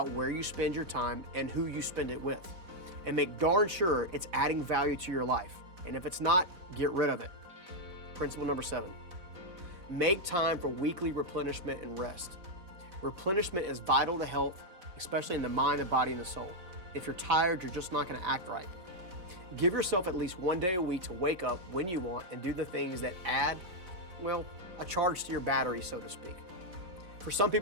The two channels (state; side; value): late; left; 4.0 ms